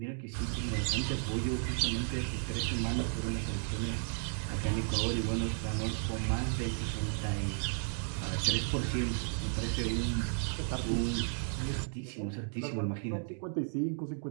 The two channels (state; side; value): silent; left; 55 dB below the other